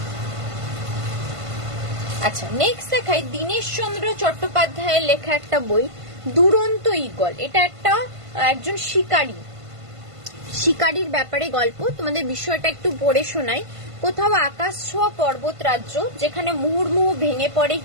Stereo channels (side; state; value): left; late; 1.5 ms